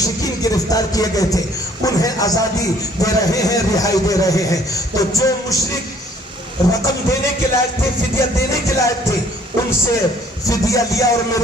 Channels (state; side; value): normal; both; correlation 0.59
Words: گرفتار کیے گئے تھے انہیں آزادی دے رہے ہیں, رہائی دے رہے ہیں. تو جو مشرک رقم دینے کے لائق تھے, فدیہ دینے کے لائق تھے, ان سے فدیہ لیا اور